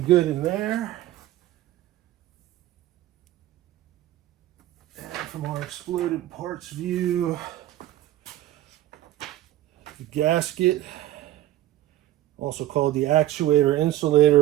in there. And from our exploded parts view, the gasket, also called the actuator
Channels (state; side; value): quieter; left; 14.3 dB